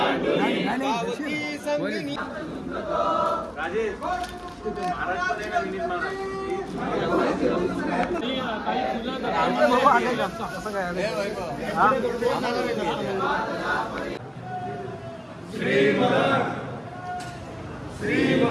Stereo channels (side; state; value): both; identical; correlation 1.00